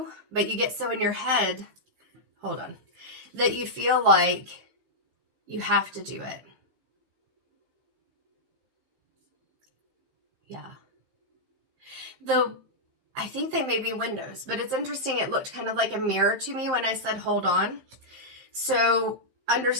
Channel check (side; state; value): left; late; 15 ms